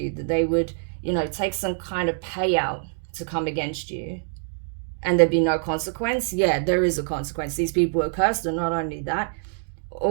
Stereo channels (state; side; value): silent; left; 62 dB below the other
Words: that they would, you know, take some kind of payout to come against you, and there'd be no consequence. Yeah, there is a consequence. These people are cursed, and not only that,